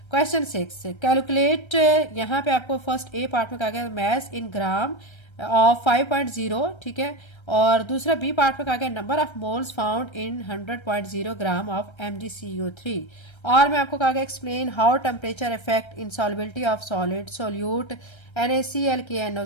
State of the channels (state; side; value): late; right; 1.3 ms